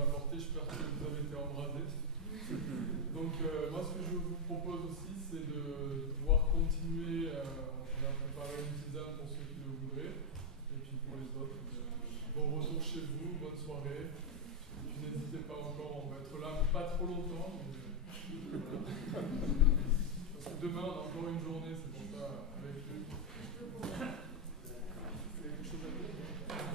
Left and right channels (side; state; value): both; normal; correlation 0.00